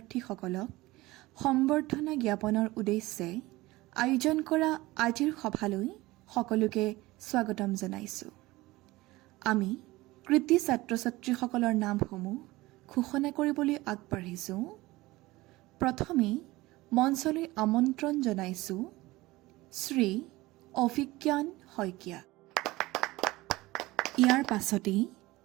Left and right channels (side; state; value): left; quieter; 19.6 dB